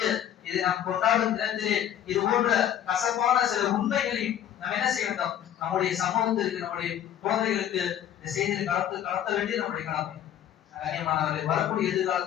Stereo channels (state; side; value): quieter; right; 10.5 dB